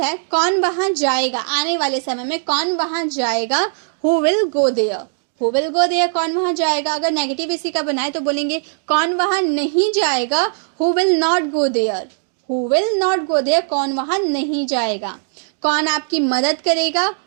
है, कौन वहां जाएगा, आने वाले समय में कौन वहां जाएगा, who will go there. Who will go there, कौन वहां जाएगा। अगर नेगेटिव इसी का बनाए तो बोलेंगे कौन वहां नहीं जाएगा, who will not go there. Who will not go there, कौन वहां नहीं जाएगा। कौन आपकी मदद करेगा,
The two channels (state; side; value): silent; left; digital silence